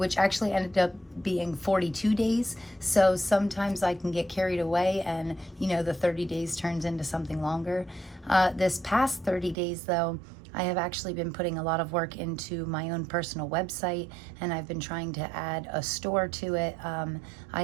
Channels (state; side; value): drops out; left; at 9.6 s